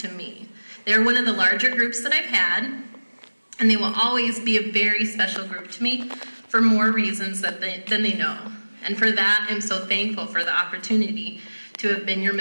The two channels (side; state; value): both; inverted; correlation -1.00